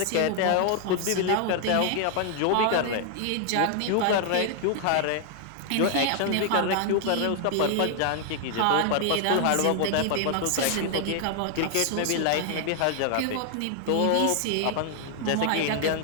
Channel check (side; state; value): both; different; correlation 0.00